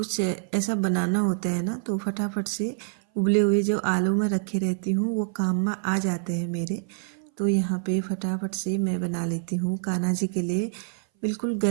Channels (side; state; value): left; silent; 59 dB below the other